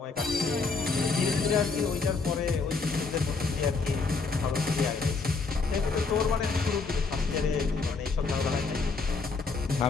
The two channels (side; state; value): right; quieter; 4.3 dB